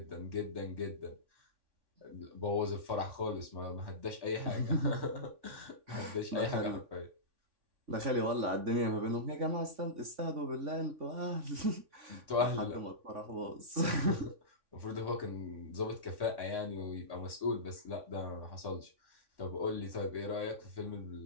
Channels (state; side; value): late; left; 3.5 ms